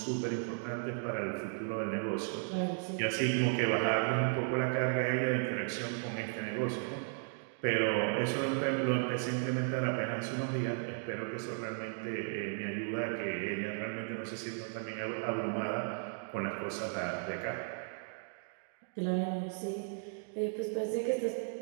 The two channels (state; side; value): silent; left; 54 dB below the other